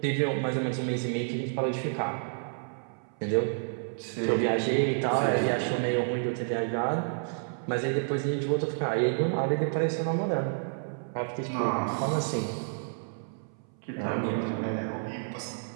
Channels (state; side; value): silent; left; 58 dB below the other